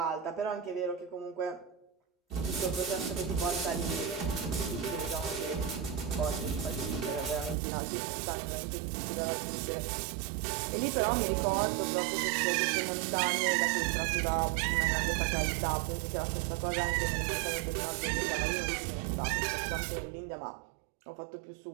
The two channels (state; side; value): drops out; left; at 7.6 s